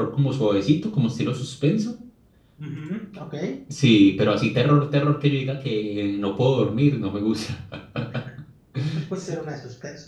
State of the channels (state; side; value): identical; both; correlation 1.00